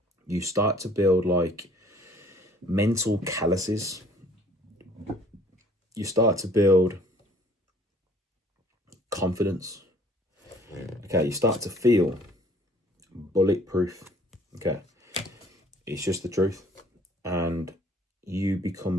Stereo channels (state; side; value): normal; both; correlation 0.56